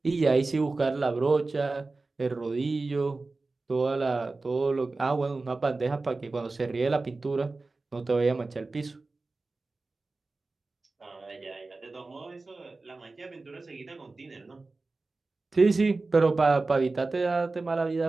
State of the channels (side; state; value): left; quieter; 3.5 dB